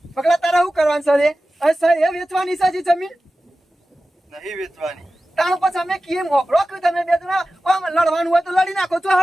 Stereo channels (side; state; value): both; normal; correlation 0.95